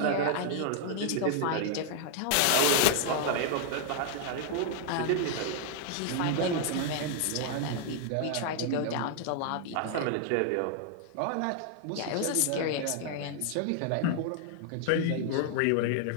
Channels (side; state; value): both; different; correlation 0.00